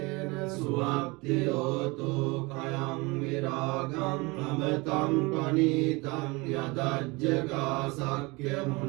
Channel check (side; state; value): left; quieter; 25.4 dB